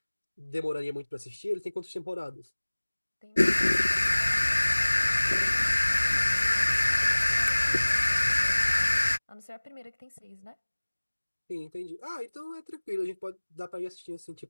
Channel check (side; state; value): both; inverted; correlation -1.00